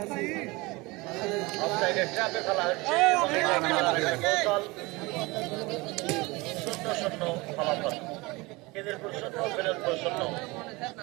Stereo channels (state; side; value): quieter; left; 23.5 dB